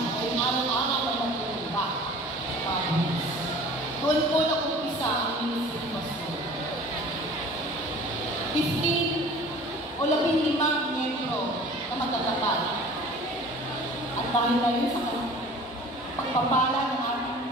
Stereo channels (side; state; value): both; normal; correlation 0.45